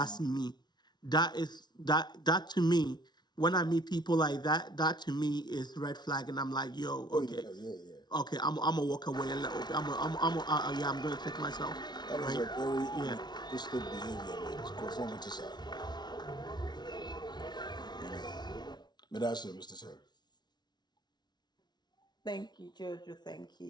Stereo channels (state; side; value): late; right; 0.20 ms